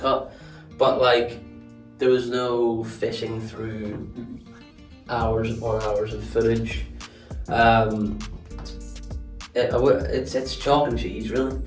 but like there was no fishing through hours upon hours of footage. It's chalk and cheese really,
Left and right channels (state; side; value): identical; both; correlation 1.00